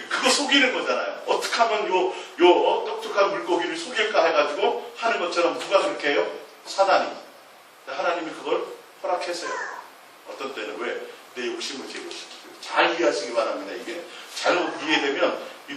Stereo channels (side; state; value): both; identical; correlation 1.00